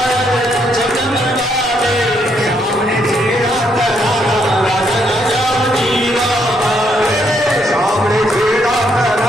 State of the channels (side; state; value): both; normal; correlation 0.73